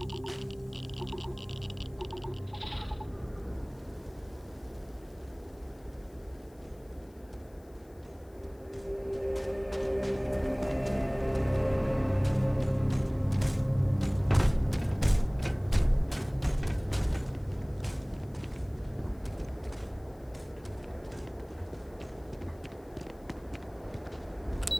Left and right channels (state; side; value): noise; left; hiss, 30 dB below the sound